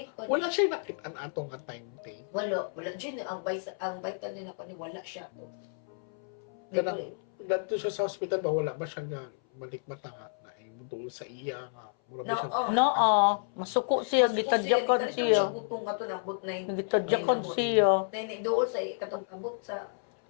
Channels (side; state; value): right; silent; 57 dB below the other